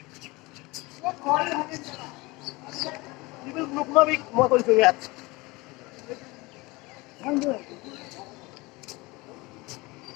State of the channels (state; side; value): quieter; right; 23.2 dB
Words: মই কৰিছো ইয়াত